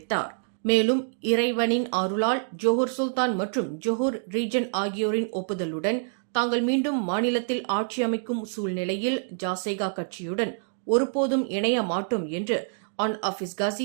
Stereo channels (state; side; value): silent; left; digital silence